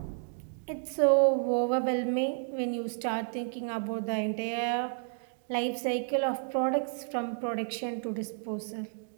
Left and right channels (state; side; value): silent; left; digital silence